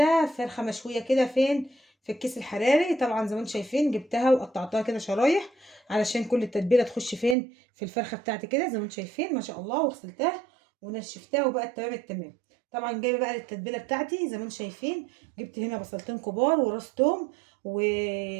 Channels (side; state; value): left; drops out; at 7.4 s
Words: فرخه مشويه كده فين في الكيس الحراري. طبعا زي ما انتم شايفين جبتها وقطعتها كده شرايح علشان كل التتبيله تخش فين في الفرخه بتاعتي كده زي ما انتم شايفين ما شاء الله، وغسلتها ونشفتها وبقت تمام التمام. طبعا جايبه بقى التتبيله بتاعتي زي ما انتم شايفين، جبت هنا بصلتين كبار وراس توم